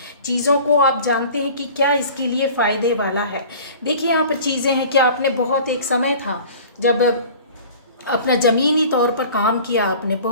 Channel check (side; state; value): both; inverted; correlation -0.44